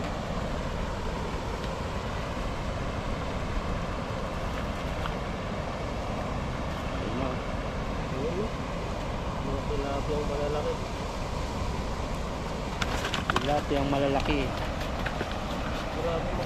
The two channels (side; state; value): both; identical; correlation 1.00